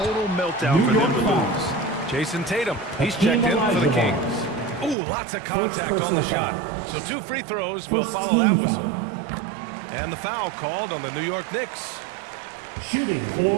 meltdown for them to lose. Jason Tatum, he's checked in for the Kings. Ooh, lots of contact on the shot. So 2 free throws will follow that whistle. And the foul called on the New York Knicks. Shooting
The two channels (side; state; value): left; drops out; at 5.0 s